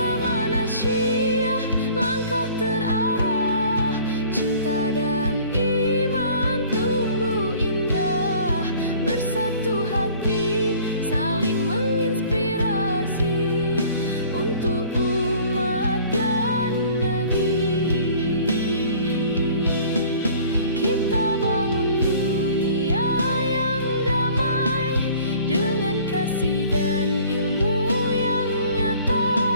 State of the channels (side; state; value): both; inverted; correlation -0.51